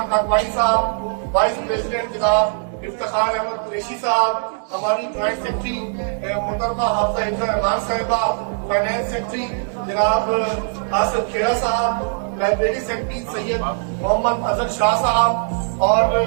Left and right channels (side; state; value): left; silent; digital silence